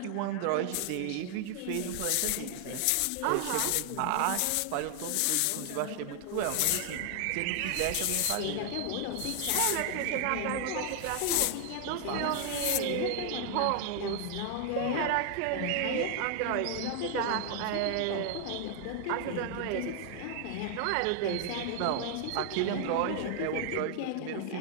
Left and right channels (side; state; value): both; different; correlation 0.00